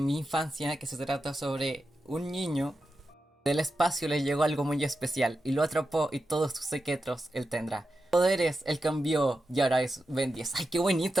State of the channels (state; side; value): normal; both; correlation 0.90